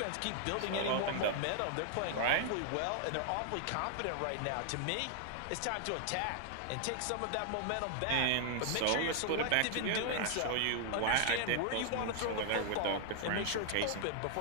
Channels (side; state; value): both; different; correlation 0.00